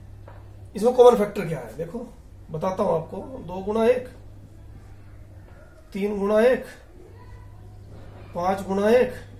इसमें कॉमन फैक्टर क्या है? देखो बताता हूं आपको। 2 गुणा 1, 3 गुणा 1, 5 गुणा 1,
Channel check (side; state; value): both; identical; correlation 1.00